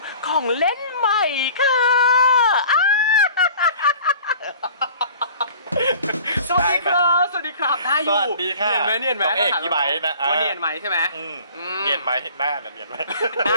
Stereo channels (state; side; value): inverted; both; correlation -0.47